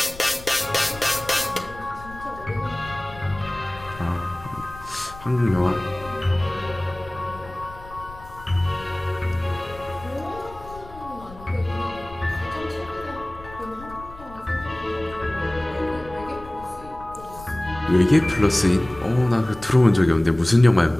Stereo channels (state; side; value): noise; left; rumble, 17 dB below the sound